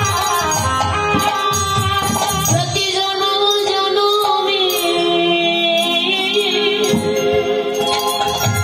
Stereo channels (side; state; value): both; identical; correlation 1.00